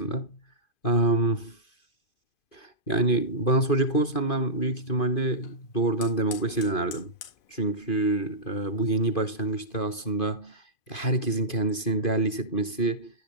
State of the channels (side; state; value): right; late; 2.5 ms